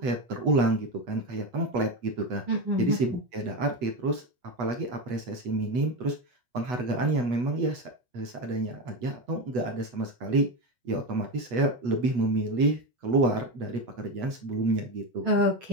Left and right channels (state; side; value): late; left; 8.1 ms